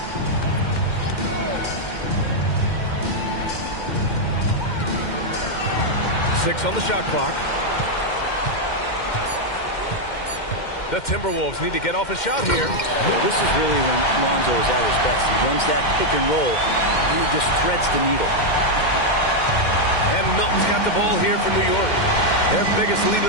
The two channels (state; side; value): late; right; 2.1 ms